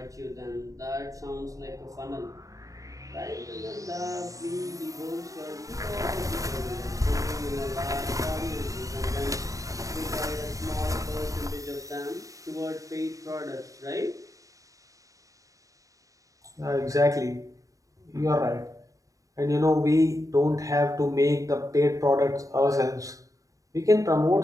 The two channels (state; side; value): late; left; 0.16 ms